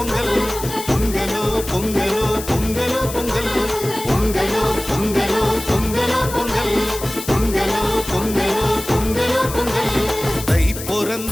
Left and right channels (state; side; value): noise; left; hiss, 10 dB below the sound